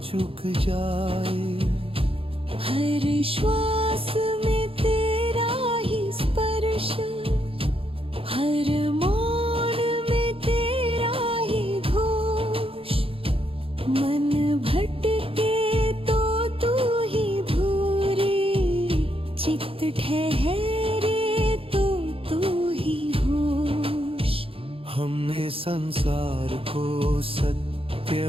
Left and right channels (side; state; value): left; late; 0.27 ms